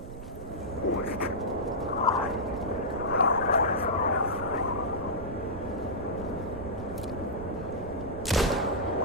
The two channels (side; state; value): right; noise; rumble, 11 dB below the sound